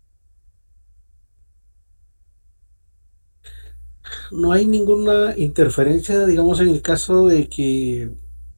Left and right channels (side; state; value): both; inverted; correlation -1.00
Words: No hay ninguna interferencia, digamos, en el caso de que,